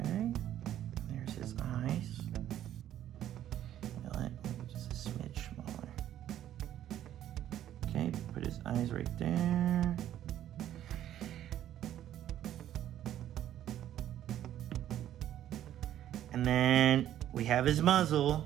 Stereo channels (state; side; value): quieter; left; 11.7 dB